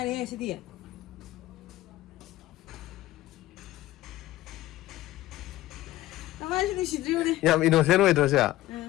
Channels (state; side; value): quieter; right; 16.0 dB